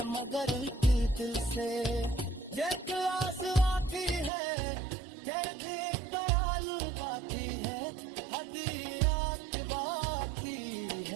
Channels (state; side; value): drops out; left; at 4.3 s